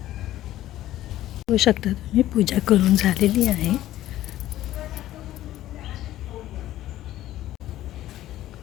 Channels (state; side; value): quieter; right; 14.0 dB